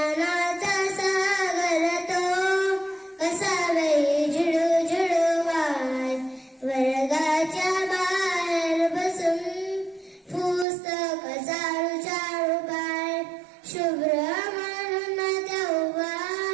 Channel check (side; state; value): left; drops out; at 10.7 s